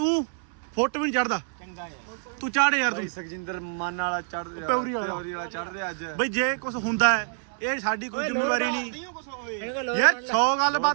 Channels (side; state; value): left; silent; 60 dB below the other